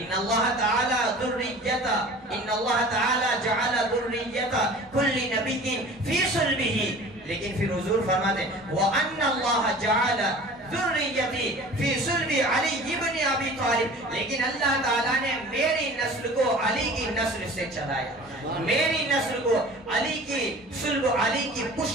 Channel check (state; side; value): normal; both; correlation 0.43